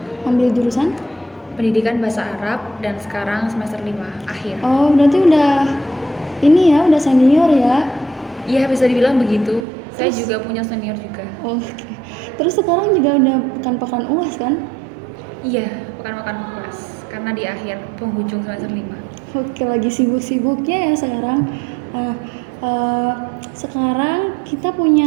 Ambil jurusan? Pendidikan Bahasa Arab dan sekarang semester 5 akhir. Oh, berarti udah ini ya, udah senior ya? Iya, bisa dibilang begitu. Saya Terus? juga punya senior juga. Oke. Terus sekarang juga udah pekan-pekan UAS kan? Iya, pekan-pekan kelas karena di akhir penghujung semester 5. Oke, lagi sibuk-sibuknya ya sekarang. Ah, eh, Sekarang kita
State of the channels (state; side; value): drops out; left; at 9.7 s